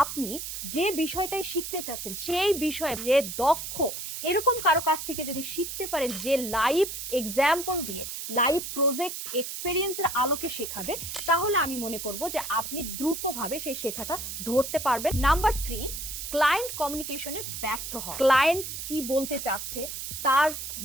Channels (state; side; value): noise; right; hiss, 6 dB below the sound